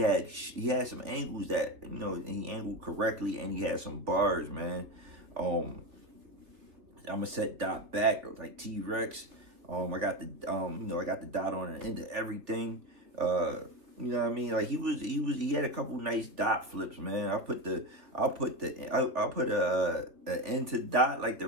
some angles that, you know, he angled correctly, and he had some bars, man. I'm gonna set Dot back like T-Rex. I got the I got the dot on the end of everything. You know what I mean? Like he had a couple nice dot flips, man. I'll put a end to Dot, like the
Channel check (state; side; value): late; left; 3.2 ms